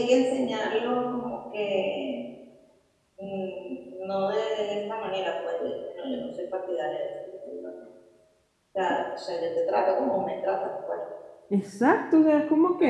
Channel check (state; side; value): identical; both; correlation 1.00